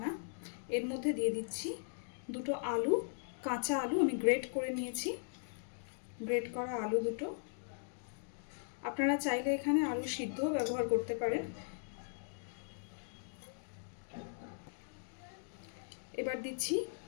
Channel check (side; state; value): right; silent; digital silence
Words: এর মধ্যে দিয়ে দিচ্ছি দুটো আলু, কাঁচা আলু আমি গ্রেট করে নিয়েছি, গ্রেট করা আলু দুটো। আপনারা চাইলে এখানে আলু সিদ্ধও ব্যবহার করতে পারেন। এবার দিচ্ছি